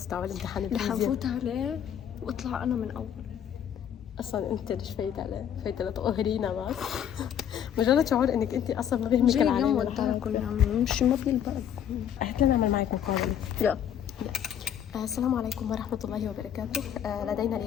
تاع الامتحان رح الفيزياء. نفوت عليه واطلع انا من اول. اصلا انت ليش فايت عليه؟ فايت لتقهرينا بس. مجرد شعور انك انت اصلا ما بيهمك جاي اليوم العالم وداكم يا عمي، مش ما بيلبقكم. قلت لنا نعمل معك مقابلة. يلا. السلام عليكم ورحمة الله وبركاته. لدينا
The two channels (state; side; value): quieter; right; 9.4 dB